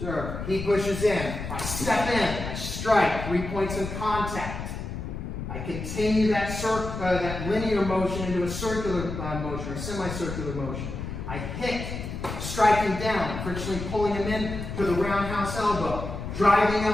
he pushes in, I step in, I strike, 3 points in contact. I continue that linear motion into a circular motion or semicircular motion. I hit, striking down, frictionally pulling him in to the roundhouse elbow, driving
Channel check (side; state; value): left; noise; rumble, 6 dB below the sound